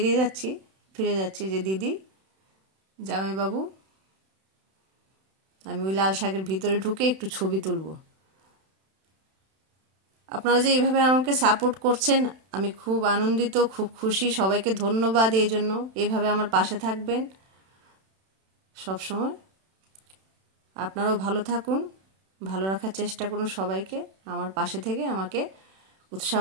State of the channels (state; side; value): late; left; 31 ms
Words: যাচ্ছি ফিরে যাচ্ছি যে দিদি জামাইবাবু আমি ওই লাল শাকের ভিতরে ঢুকে একটু ছবি তুলবো। আপনারা যে এইভাবে আমাকে সাপোর্ট করছেন আমি খুব আনন্দিত, খুব খুশি, সবাইকে ধন্যবাদ এই জন্য। এইভাবে আমার পাশে থাকবেন সব সময়। আপনারাও ভালো থাকুন, ভালো রাখার চেষ্টা করুন সবাইকে, আমার পাশে থেকে আমাকে